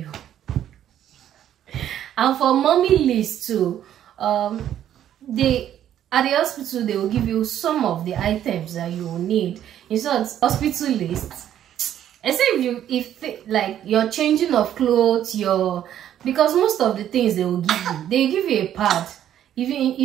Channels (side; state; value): left; quieter; 10.9 dB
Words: And for mommy list too, they at the hospital they will give you some of the items that you will need. It's not hospital list. Except if like you're changing of clothes, because most of the things they will give you a pad. If